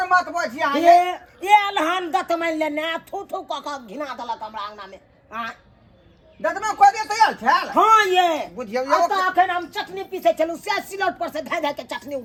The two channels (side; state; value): both; identical; correlation 1.00